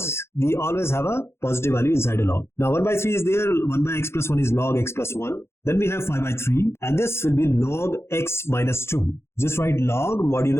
we always have a positive value inside a log. Now 1 by 3 is there, 1 by x plus 1 is log x plus 1. Then we have 5 by 3, and this will be log x minus 2. Just write log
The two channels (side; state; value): right; late; 0.12 ms